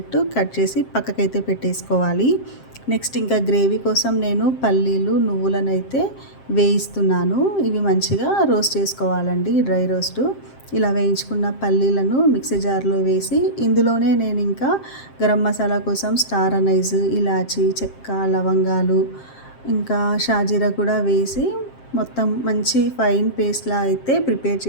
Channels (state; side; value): late; right; 7.6 ms